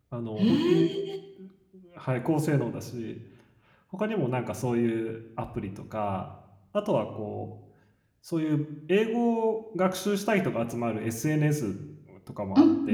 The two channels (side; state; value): both; identical; correlation 1.00